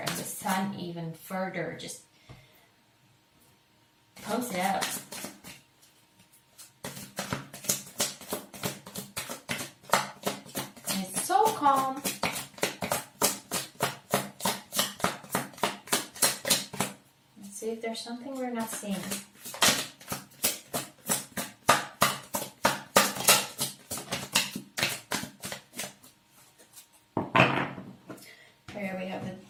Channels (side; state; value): both; identical; correlation 1.00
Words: the sun even further just pumps it out. And it's so calm. see if there's something we're not seeing. Here we have the